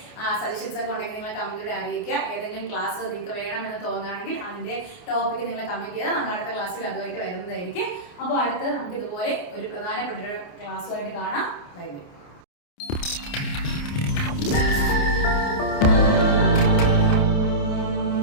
സജഷൻസ് ഒക്കെ ഉണ്ടെങ്കിൽ നിങ്ങൾ കമന്റിലൂടെ അറിയിക്കുക. ഏതെങ്കിലും ക്ലാസ് നിങ്ങൾക്ക് വേണമെന്ന് തോന്നുകയാണെങ്കിൽ അതിന്റെ ടോപ്പിക്ക് നിങ്ങൾ കമന്റ് ചെയ്താൽ നമ്മൾ അടുത്ത ക്ലാസ്സിൽ അതുമായിട്ട് വരുന്നതായിരിക്കും. അപ്പോൾ അടുത്ത് നമുക്ക് ഇതുപോലെ ഒരു പ്രധാനപ്പെട്ട ഒരു ക്ലാസ്സുമായിട്ട് കാണാം. Bye bye.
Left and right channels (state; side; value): late; right; 28 ms